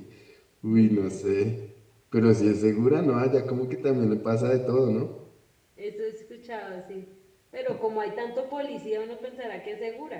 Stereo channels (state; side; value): identical; both; correlation 1.00